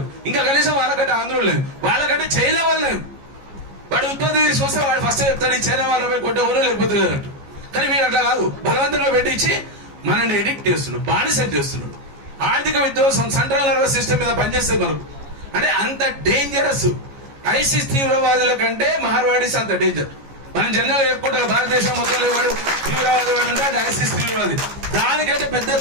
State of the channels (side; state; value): left; late; 14 ms